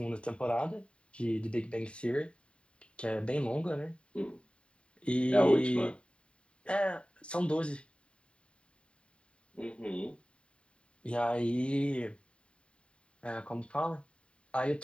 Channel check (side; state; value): right; late; 0.057 ms